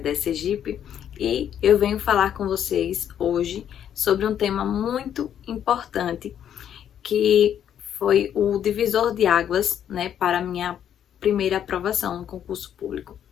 Sergipe. E eu venho falar com vocês hoje sobre um tema muito importante, que foi o divisor de águas, né, para a minha primeira aprovação no concurso público.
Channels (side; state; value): right; quieter; 9.6 dB